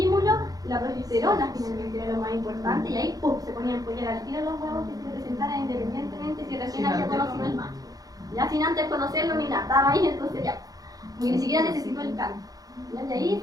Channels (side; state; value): left; late; 0.18 ms